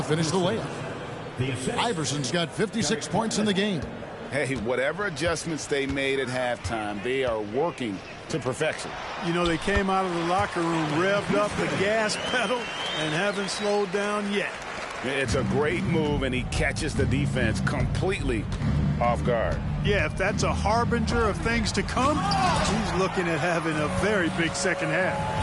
finish the layup. Iverson's got 56 points in the game. Hey, whatever adjustments they made at halftime, they are working to perfection. You know, they came out of the locker room, revved up the gas pedal, and haven't slowed down yet. It's a great move, and he catches the defense completely off guard. Yeah, if that's a harbinger of things to come, he's looking at having a very big second half.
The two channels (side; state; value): both; identical; correlation 1.00